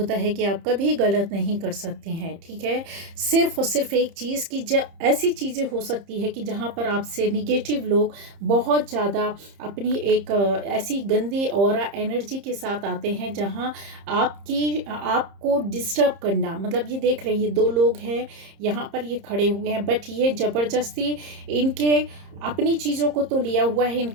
है कि आप कभी गलत नहीं कर सकते हैं। ठीक है, सिर्फ और सिर्फ एक चीज़ की ऐसी चीज़ें हो सकती है कि जहाँ पर आपसे निगेटिव लोग बहुत ज़्यादा अपनी एक ऐसी गंदी ऑरा एनर्जी के साथ आते हैं जहाँ आपको डिस्टर्ब करना। मतलब ये देख रहे हैं, ये दो लोग हैं यहाँ पर, ये खड़े हुए हैं, बट ये ज़बरदस्ती इनके अपनी चीज़ों को तो लिया हुआ है,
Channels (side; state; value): left; late; 30 ms